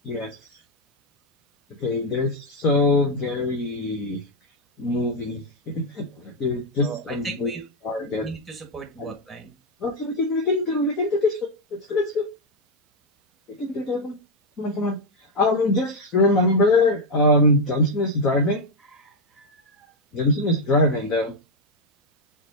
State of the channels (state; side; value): normal; both; correlation 0.03